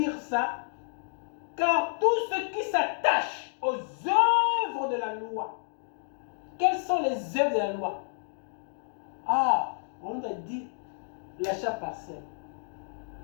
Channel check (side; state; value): right; silent; digital silence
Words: ça. Car tous ceux qui s'attachent aux œuvres de la loi. Quelles sont les œuvres de la loi? Ah, on a dit l'achat partiel.